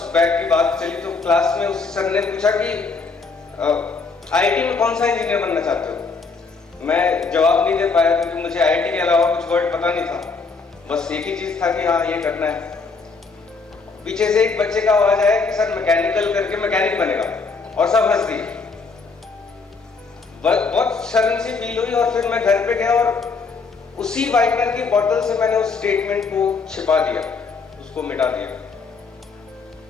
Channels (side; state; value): right; quieter; 4.6 dB